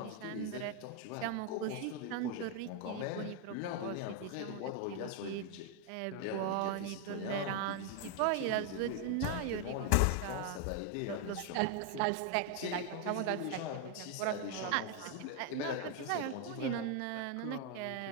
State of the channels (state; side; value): different; both; correlation 0.01